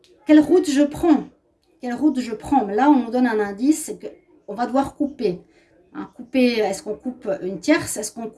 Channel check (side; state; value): both; identical; correlation 1.00